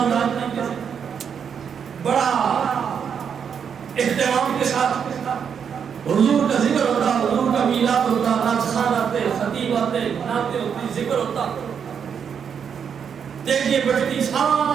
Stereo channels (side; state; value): left; quieter; 7.3 dB